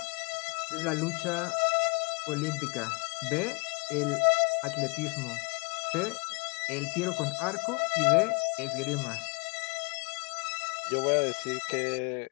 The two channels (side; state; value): right; quieter; 32.3 dB